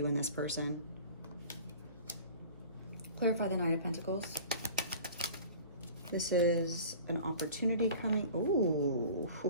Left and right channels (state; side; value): inverted; both; correlation -0.43